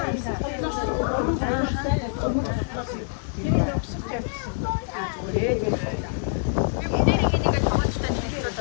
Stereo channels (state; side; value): silent; right; 61 dB below the other